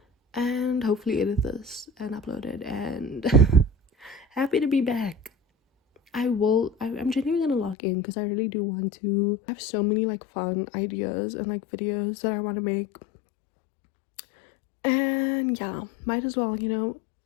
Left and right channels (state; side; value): drops out; right; at 7.8 s